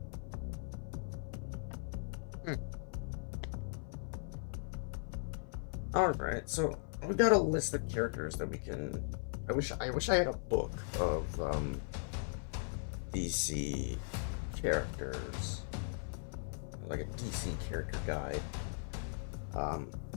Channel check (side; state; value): right; silent; 52 dB below the other